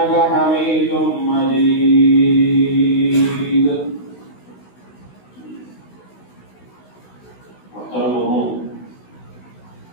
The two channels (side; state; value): right; late; 16 ms